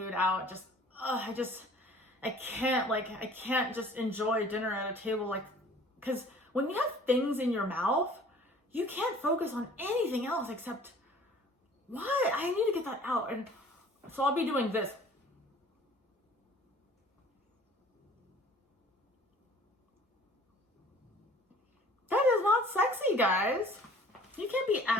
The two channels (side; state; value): both; normal; correlation 0.50